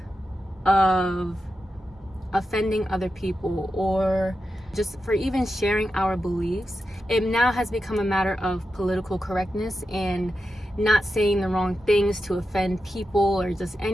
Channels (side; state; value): both; normal; correlation 0.90